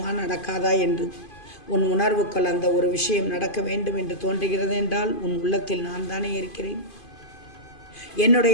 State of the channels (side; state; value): right; late; 2.5 ms